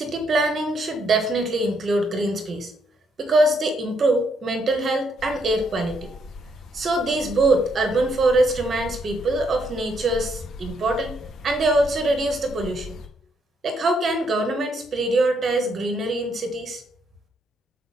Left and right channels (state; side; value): normal; both; correlation 0.74